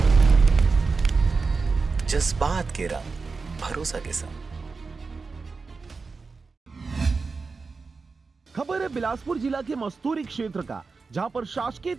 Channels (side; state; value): left; quieter; 4.4 dB